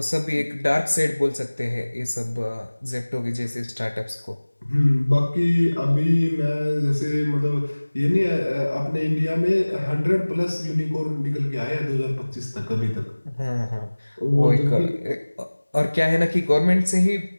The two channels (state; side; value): inverted; both; correlation -1.00